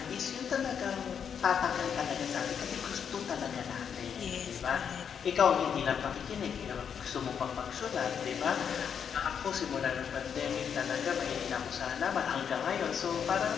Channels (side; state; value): right; quieter; 7.5 dB